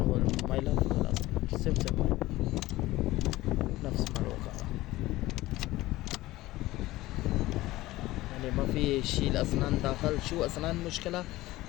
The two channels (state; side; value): quieter; right; 17.6 dB